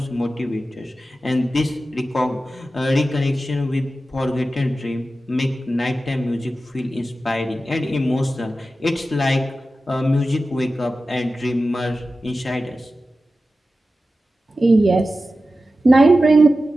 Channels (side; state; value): both; normal; correlation 0.93